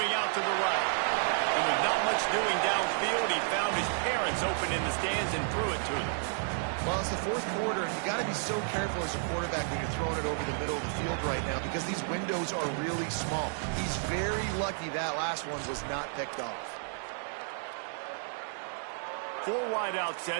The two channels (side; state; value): left; silent; 57 dB below the other